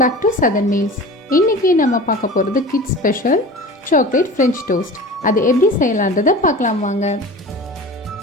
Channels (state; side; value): normal; both; correlation 0.36